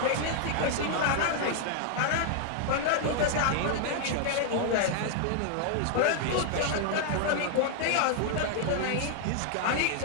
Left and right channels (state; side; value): different; both; correlation 0.00